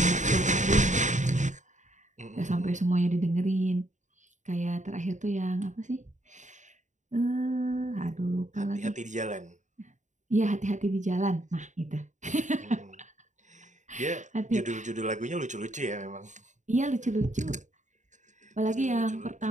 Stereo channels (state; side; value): late; left; 0.35 ms